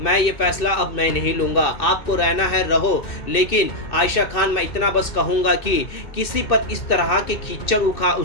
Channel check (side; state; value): right; late; 2.6 ms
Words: ये फैसला अब मैं नहीं लूंगा, आपको रहना है रहो, लेकिन आयशा खान मैं इतना बस कहूंगा कि किसी पर इस तरह के कीचड़